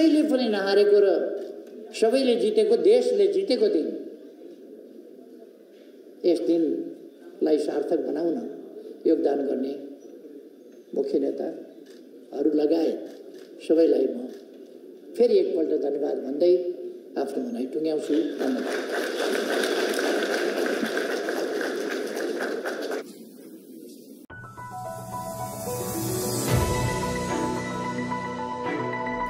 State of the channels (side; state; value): both; identical; correlation 1.00